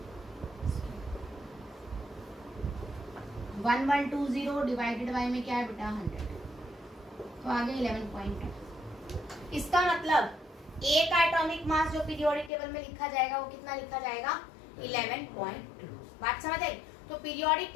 1 1 2 0 डिवाइडेड बाय में क्या है बेटा? 100। तो आगे 11.2। इसका मतलब ए का एटॉमिक मास जो पीरियोडिक टेबल में लिखा जाएगा वो कितना लिखा जाएगा? 11.2। बात समझ आई? तो पीरियोडिक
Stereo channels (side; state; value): right; drops out; at 12.5 s